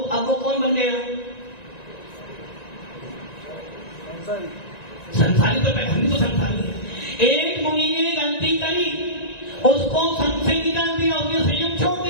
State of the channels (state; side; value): late; right; 1.9 ms